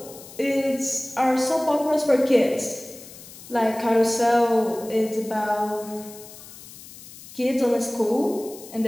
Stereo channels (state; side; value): noise; left; hiss, 17 dB below the sound